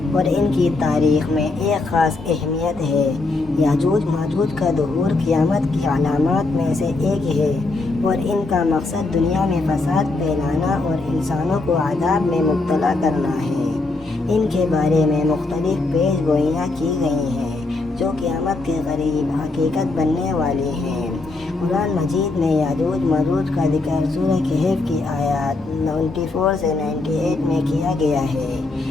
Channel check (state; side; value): quieter; right; 3.4 dB